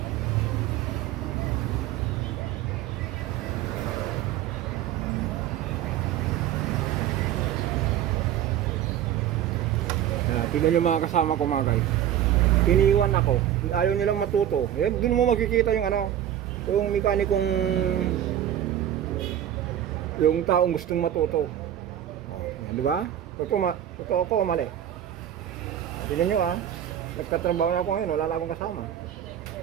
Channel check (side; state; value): left; quieter; 11.1 dB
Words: Tignan yung mga kasama ko mga guys. Iniwan ako. Ayaw nilang matuto. Yan, doon mo makikita yung yung mekanikong, yung taong gustong matuto. Yan, di ba? Totoo ko, mali. Tignan nyo nagtatrabaho na ako ngayon, wala na akong kasama.